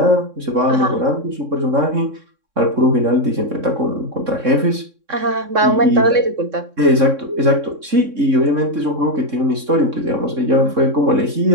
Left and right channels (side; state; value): left; late; 3.6 ms